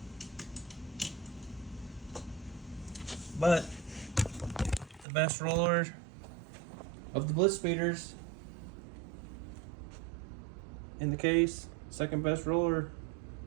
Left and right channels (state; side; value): drops out; left; at 5.1 s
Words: But the best roller of the Blitzspeeders in the case, second best roller.